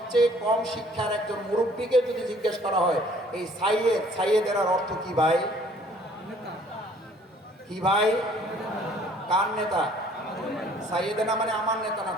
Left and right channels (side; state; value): both; normal; correlation 0.57